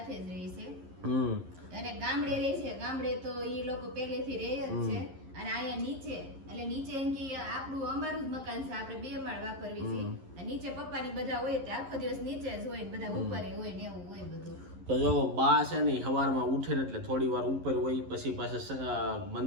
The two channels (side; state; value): left; late; 11 ms